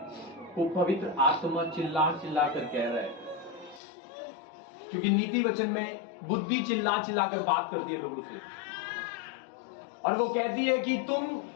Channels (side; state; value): right; drops out; at 3.8 s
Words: को पवित्र आत्मा चिल्ला चिल्ला कर कह रहा है, क्योंकि नीति वचन में बुद्धि चिल्ला चिल्ला कर बात करती है लोगों से, और वो कहती है कि तुम